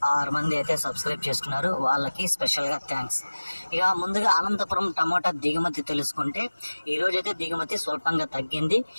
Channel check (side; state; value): both; inverted; correlation -1.00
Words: 6 మంది అయితే సబ్స్క్రైబ్ చేసుకున్నారు, వాళ్ళకి స్పెషల్గా థ్యాంక్స్. ఇక ముందుగా అనంతపురం టమోటా దిగుమతి తెలుసుకుంటే ఈరోజు అయితే దిగుమతి స్వల్పంగా తగ్గింది.